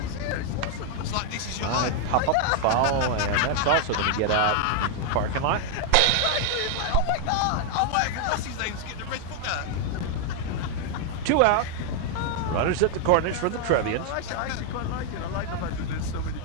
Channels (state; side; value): different; both; correlation 0.00